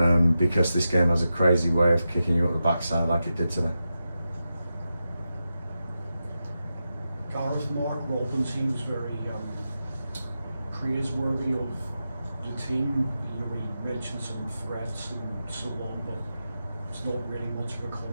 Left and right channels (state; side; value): inverted; both; correlation -0.90